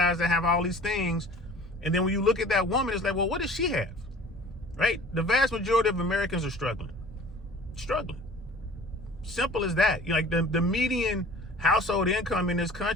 that have all these things. And then when you look at that woman, it's like, well, what does she have? Right? The vast majority of Americans are struggling. Simple as that. Like the median household income in this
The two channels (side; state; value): both; normal; correlation 0.46